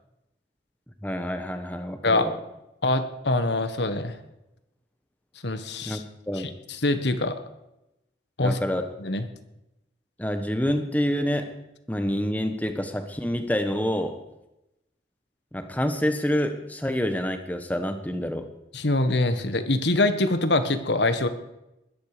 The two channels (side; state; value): both; normal; correlation 0.46